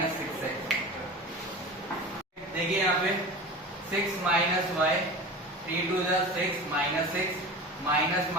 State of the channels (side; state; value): both; normal; correlation 0.33